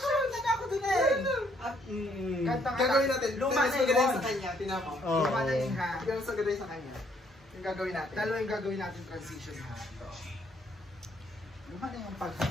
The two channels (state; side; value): normal; both; correlation 0.67